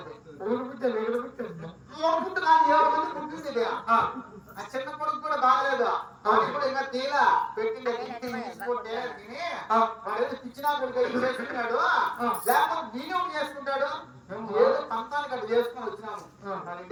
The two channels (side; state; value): both; identical; correlation 1.00